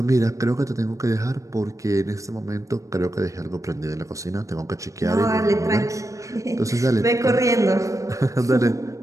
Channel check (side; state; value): left; late; 0.16 ms